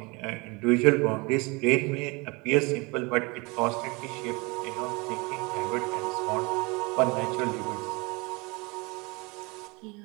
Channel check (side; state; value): left; quieter; 27.0 dB